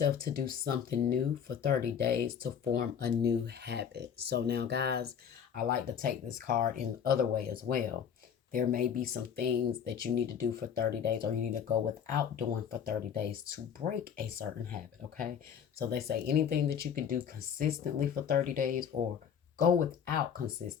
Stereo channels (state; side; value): quieter; right; 7.9 dB